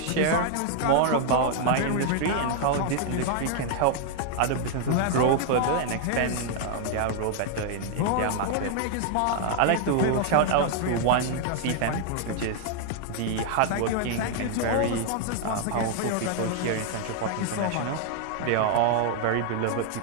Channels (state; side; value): different; both; correlation 0.00